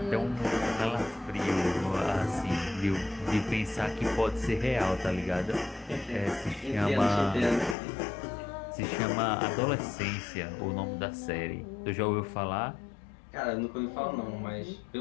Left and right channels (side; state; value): right; drops out; at 7.8 s